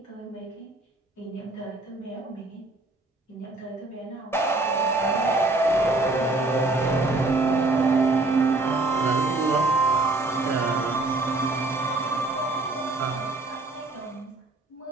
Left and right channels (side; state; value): left; quieter; 3.1 dB